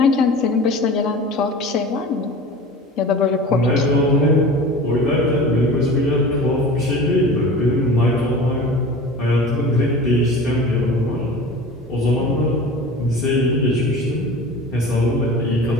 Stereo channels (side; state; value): both; normal; correlation 0.37